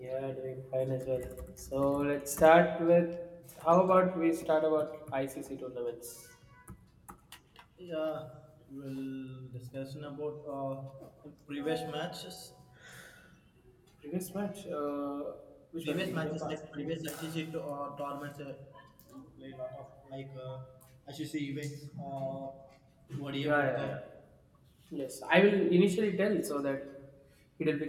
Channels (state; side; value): identical; both; correlation 1.00